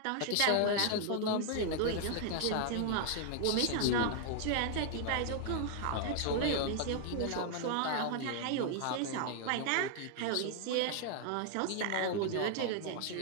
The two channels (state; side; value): different; both; correlation 0.00